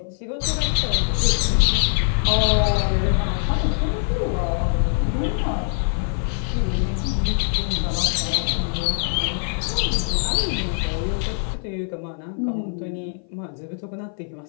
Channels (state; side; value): silent; right; 57 dB below the other